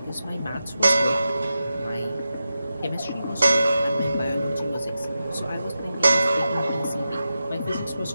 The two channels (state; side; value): inverted; both; correlation -0.91